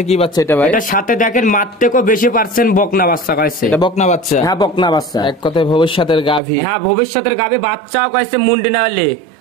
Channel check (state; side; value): drops out; left; at 6.4 s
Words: কি বাচ্চা এটা ভাই? এটার সাথে দেখেন মার থেকেও বেশি পার্সেন্ট বকনা বাচ্চা কইছে। এটা বকনা বাচ্চা? হ্যাঁ, বকনা বাচ্চা। এক কথায় ভবিষ্যতের গাভী। হ্যাঁ, ভবিষ্যতের গাভী। বাচ্চাও কইছে মুন্ডি না হলে